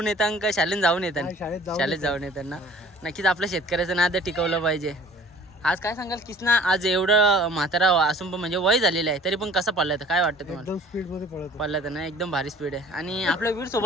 येतात का शाळेत जाऊन येतात? शाळेत जाऊन येतात ना. नक्कीच आपल्या शेतकऱ्याचं नाद टिकवलं पाहिजे. आज काय सांगाल किसना आज एवढं म्हातारा असून पण म्हणजे वय झालेलं आहे तरी पण कसं पडलं तर काय वाटतं तुम्हाला? एकदम स्पीड मध्ये पळतो. पडलं तर ना एकदम भारी स्पीड आहे. आणि आपल्या वीर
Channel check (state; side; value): normal; both; correlation 0.50